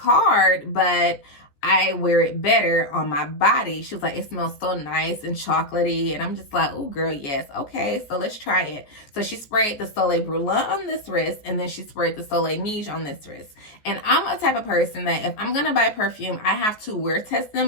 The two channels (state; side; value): late; right; 14 ms